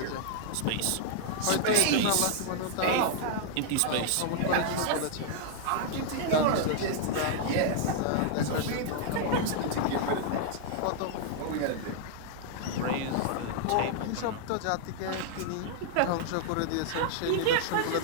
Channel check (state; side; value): different; both; correlation -0.01